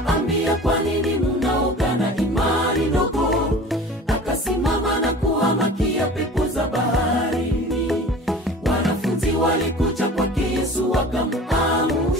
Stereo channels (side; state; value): both; normal; correlation 0.40